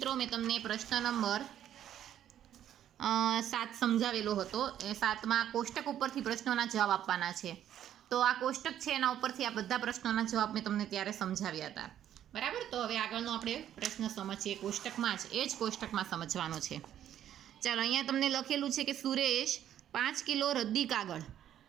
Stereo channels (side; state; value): left; quieter; 10.9 dB